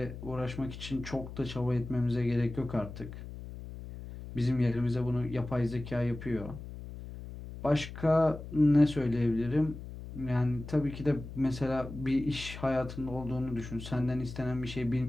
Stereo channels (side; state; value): left; noise; hum, 11 dB below the sound